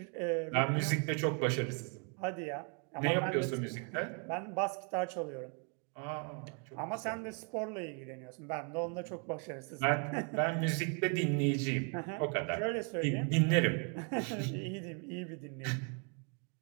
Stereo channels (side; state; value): left; quieter; 37.6 dB